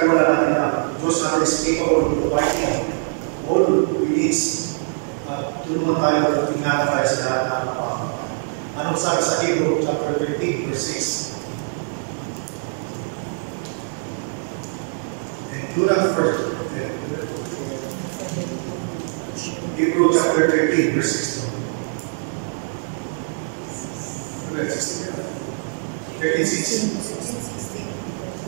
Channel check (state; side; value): silent; left; 63 dB below the other